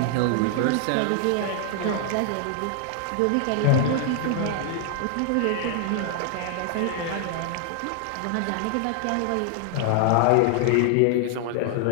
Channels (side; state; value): both; different; correlation 0.00